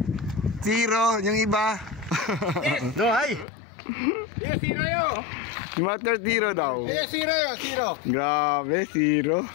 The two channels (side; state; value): right; drops out; at 3.5 s